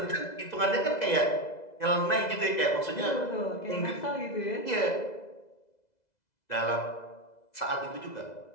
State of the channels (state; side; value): late; right; 2.0 ms